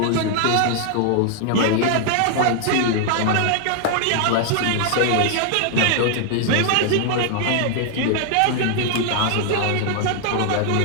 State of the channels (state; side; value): different; both; correlation 0.00